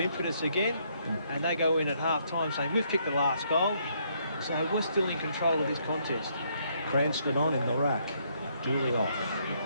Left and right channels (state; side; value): inverted; both; correlation -0.71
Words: again, and they go in at half-time saying, we've kicked the last goal, so we're still in control of this contest. Cranston on in the rack. Dooley off.